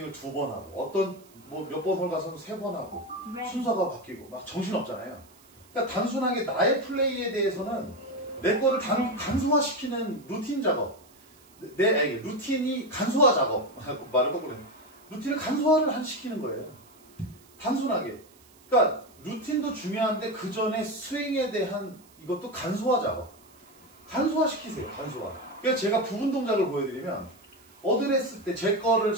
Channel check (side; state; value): right; noise; hiss, 27 dB below the sound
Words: 2번 하고, 어떤 뭐 몇 번 홀 가서는 3번 하고, 순서가 바뀌고 막 정신없잖아요. 그러니까 단순하게 나의 플레이에 대해서는 내 거를 간소화시키는 루틴 작업, 루틴이 간소화 작업 말을 거꾸로 해. 루틴을 간소화를 시키는 거예요. 단순하게. 그러니까 루틴도 중요한데 그 전에 스윙에 대한 이것도 간소화 작업. 간소화 시키세요. 간소화. 그래서 제가 부분 동작을 보여드리면 어드레스 때 제 거를